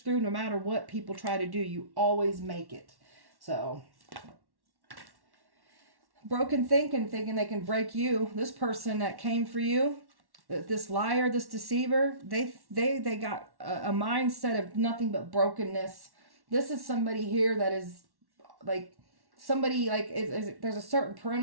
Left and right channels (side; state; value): left; late; 1.1 ms